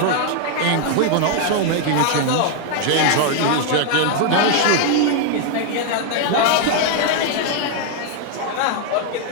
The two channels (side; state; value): both; different; correlation 0.00